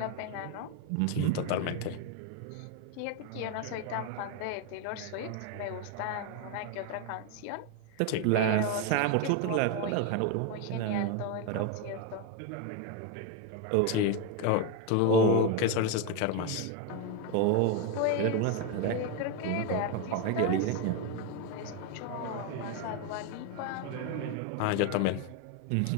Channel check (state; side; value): different; both; correlation 0.02